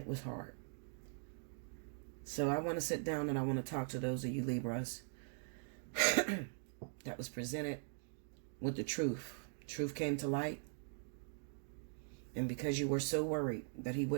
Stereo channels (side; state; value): left; silent; digital silence